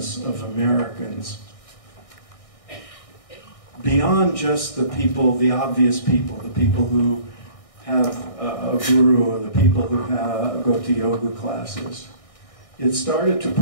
of Americans beyond just the people, the obvious people, the people who have a guru or the people who go to yoga classes. It started to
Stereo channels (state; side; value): late; right; 1.6 ms